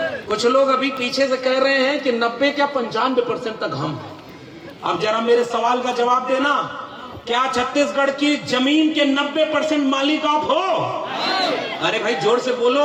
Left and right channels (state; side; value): identical; both; correlation 1.00